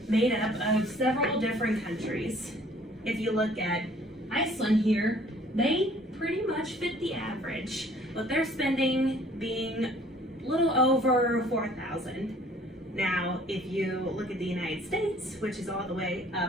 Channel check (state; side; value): normal; both; correlation 0.56